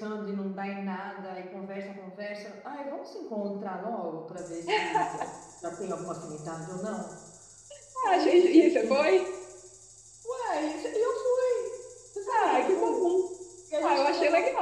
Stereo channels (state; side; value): identical; both; correlation 1.00